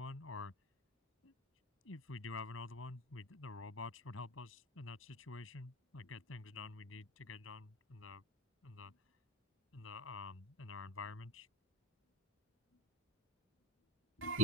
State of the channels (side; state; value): both; normal; correlation 0.27